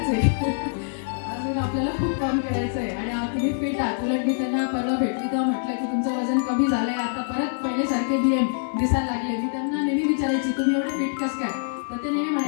आहे. अजून आपल्याला खूप काम करायचं आहे आणि तुम्ही फिट आहात. उलट मी त्यांना परवा भेटली तेव्हा म्हटलं की तुमचं वजन कमी झालंय, आता परत पहिल्यासारखे DM दिसायला लागले. मी त्यांना नेहमी विचारायची तुम्ही एवढे फिट कसं काय, तर ते नेहमी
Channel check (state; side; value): silent; right; digital silence